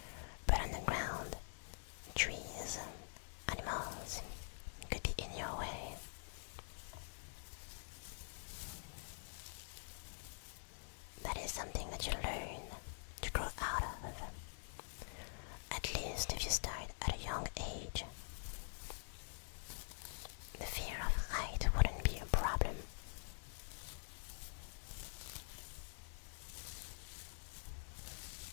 But on the ground, trees, animals could be in your way. That is something that you learn to grow out of, at least if you start at a young age. The fear of height wouldn't be a problem.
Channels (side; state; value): right; silent; digital silence